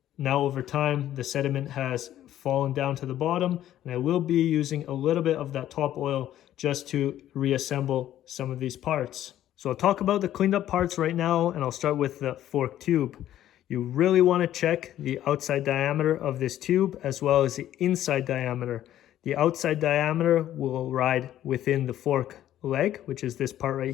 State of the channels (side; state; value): right; quieter; 12.3 dB